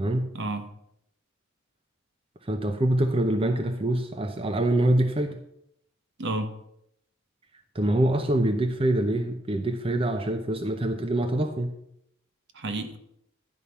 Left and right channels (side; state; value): both; normal; correlation 0.79